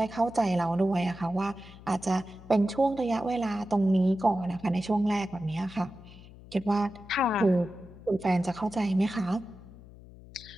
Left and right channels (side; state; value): left; noise; hum, 19 dB below the sound